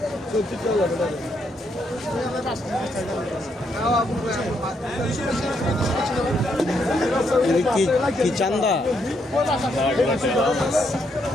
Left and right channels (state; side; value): normal; both; correlation 0.76